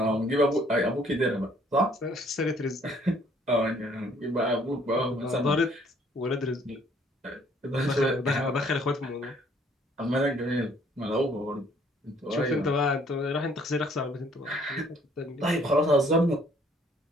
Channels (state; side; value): normal; both; correlation 0.61